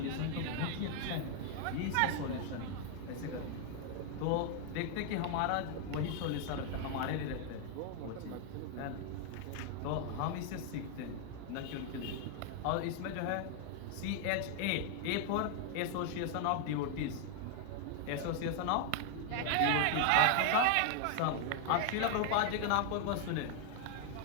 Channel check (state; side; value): different; both; correlation 0.00